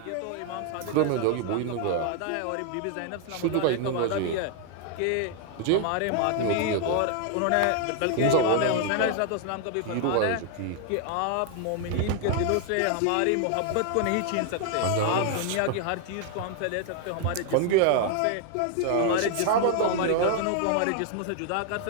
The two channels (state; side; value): different; both; correlation 0.00